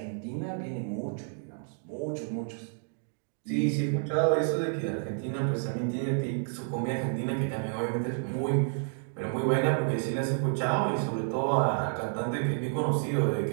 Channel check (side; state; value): left; silent; digital silence